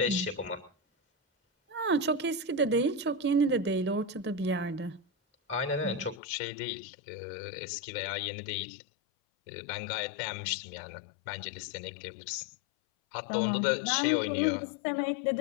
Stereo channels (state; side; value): drops out; right; at 6.2 s